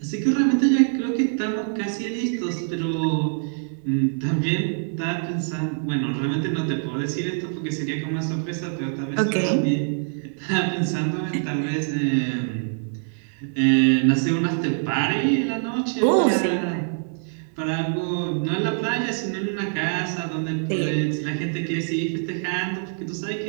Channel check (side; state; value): left; silent; digital silence